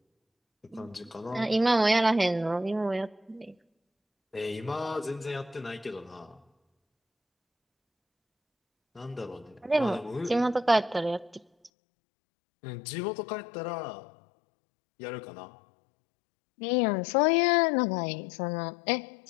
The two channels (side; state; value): right; drops out; at 11.7 s